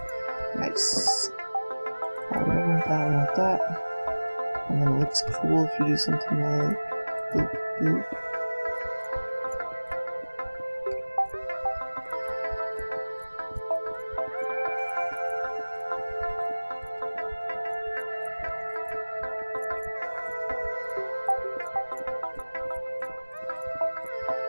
Nice. I want that. And then it looks cool if you do something like boop, boop.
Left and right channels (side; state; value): both; inverted; correlation -1.00